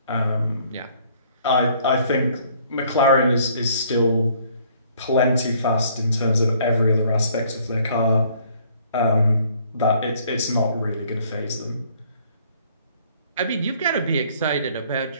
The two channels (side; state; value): both; inverted; correlation -0.61